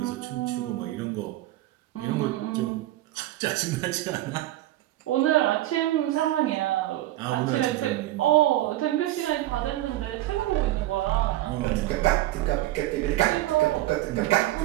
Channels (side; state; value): left; quieter; 15.7 dB